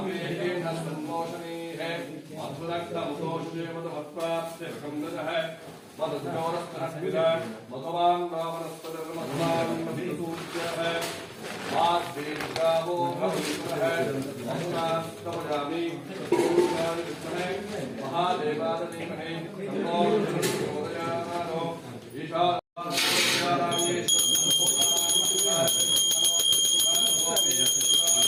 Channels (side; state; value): both; identical; correlation 1.00